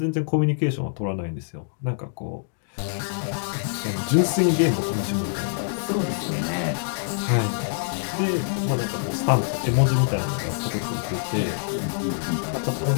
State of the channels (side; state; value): right; silent; digital silence